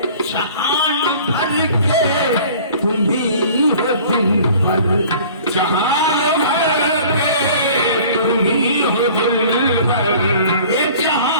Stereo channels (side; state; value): both; inverted; correlation -0.47